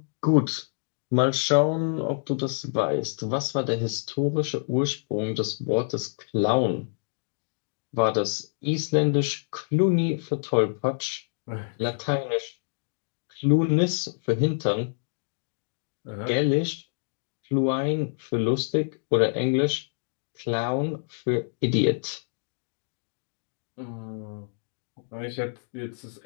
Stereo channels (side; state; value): right; silent; digital silence